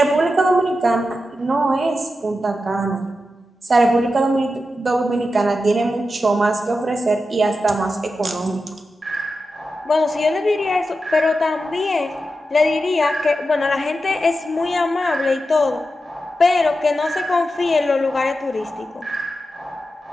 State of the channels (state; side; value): normal; both; correlation 0.90